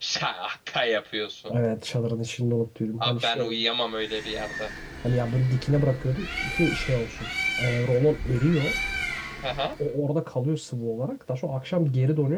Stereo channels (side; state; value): both; identical; correlation 1.00